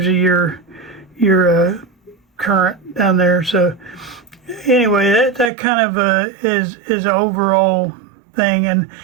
you your current down there. So anyway, that kind of is an overall thing, and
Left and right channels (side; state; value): left; drops out; at 5.5 s